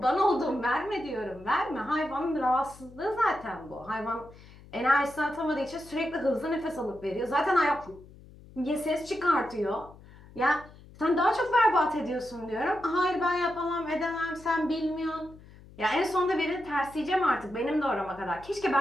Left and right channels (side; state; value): left; noise; hum, 21 dB below the sound